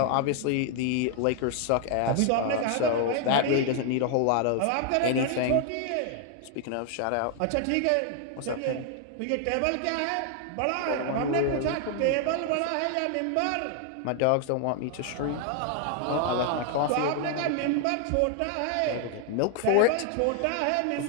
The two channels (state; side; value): different; both; correlation 0.00